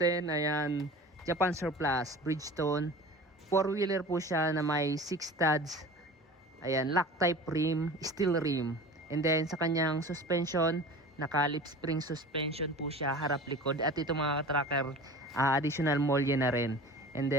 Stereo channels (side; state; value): both; normal; correlation 0.38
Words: ayan, Japan Surplus Bridgestone, 4-wheeler po siya na may 6 studs. Ayan, lock type rim, steel rim. And then sa kanyang suspension, naka lip spring suspension po siya, harap likod. At ito mga tracker, additional molye na rin. And